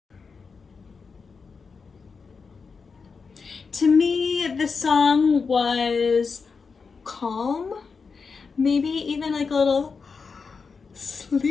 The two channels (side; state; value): right; quieter; 5.1 dB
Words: To me, the song was calm, maybe even like a little